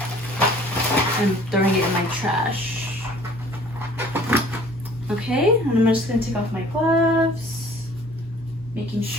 up, and throwing it in my trash. Okay, and I'm just going to take off my gloves, making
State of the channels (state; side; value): normal; both; correlation 0.53